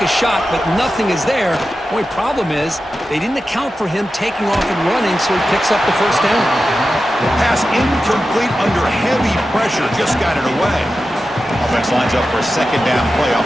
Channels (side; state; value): both; normal; correlation 0.92